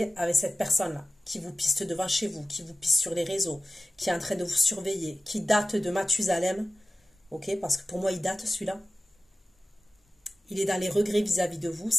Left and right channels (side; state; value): both; normal; correlation 0.96